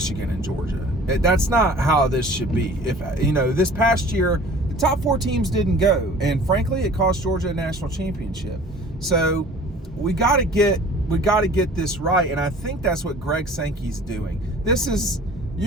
and Georgia. That's not how this should be. If this past year the top 4 teams didn't go, and frankly it cost Georgia a national championship. So we got to get this right, and I think that's what Greg Sankey's doing.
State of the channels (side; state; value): both; normal; correlation 0.47